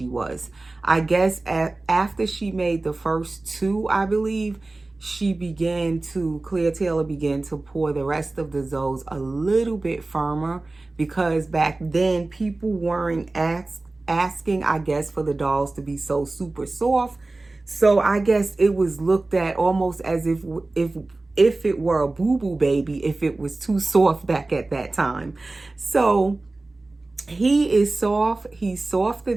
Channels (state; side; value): quieter; left; 3.2 dB